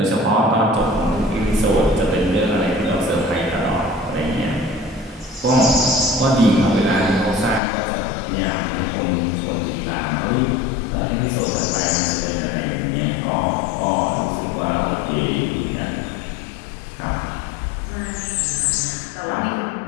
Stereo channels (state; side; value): drops out; right; at 7.6 s